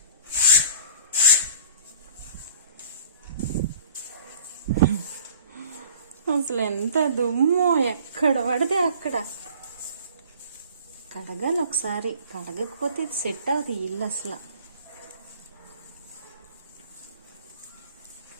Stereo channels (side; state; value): both; inverted; correlation -0.48